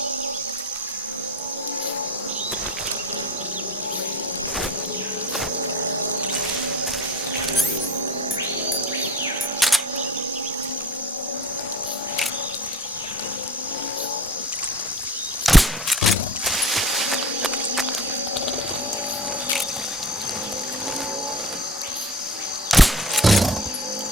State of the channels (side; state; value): both; normal; correlation 0.39